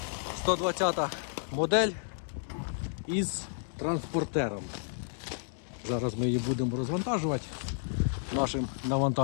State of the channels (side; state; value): right; silent; digital silence